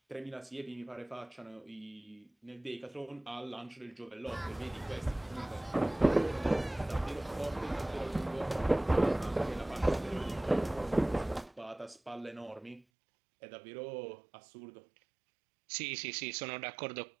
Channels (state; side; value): drops out; left; at 12.9 s